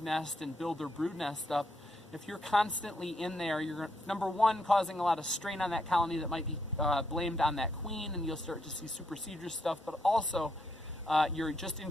nest and build their brood nest up, if you're constantly in there, you're, number one, causing a lot of strain on that colony that might be blamed on that queen, and you'll start to see supersedure stuff, but also you're just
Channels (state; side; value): normal; both; correlation 0.77